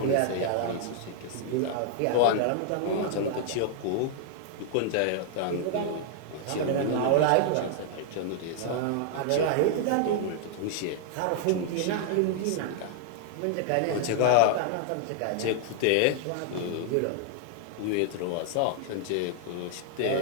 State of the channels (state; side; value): different; both; correlation 0.00